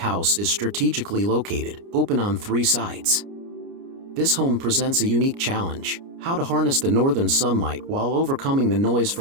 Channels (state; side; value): late; left; 29 ms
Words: is strategically located, open on 3 sides. This home presents a unique challenge: how to harness the northern sunlight while overcoming the noise